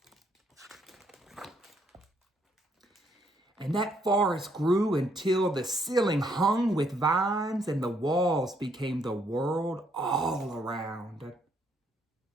And that forest grew until the ceiling hung with vines and the walls became the world all around.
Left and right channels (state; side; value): normal; both; correlation 0.71